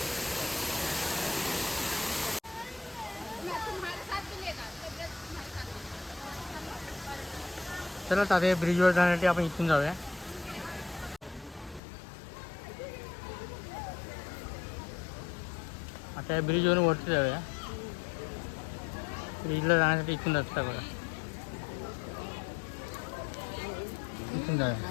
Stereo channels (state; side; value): drops out; right; at 11.8 s